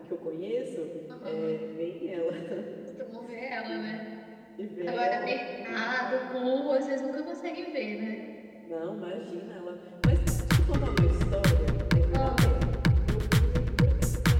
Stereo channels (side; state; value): both; identical; correlation 1.00